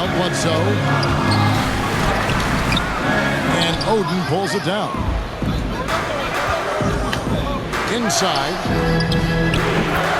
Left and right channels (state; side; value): identical; both; correlation 1.00